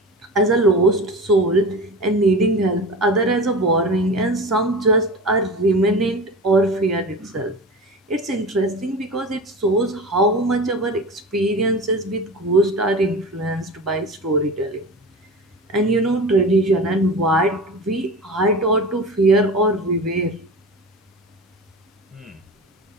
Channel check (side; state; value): both; normal; correlation 0.31